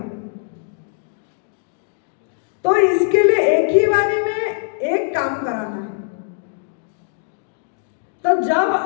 तो इसके लिए एक ही बारी में एक काम कराना है। तो जब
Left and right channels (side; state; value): right; silent; digital silence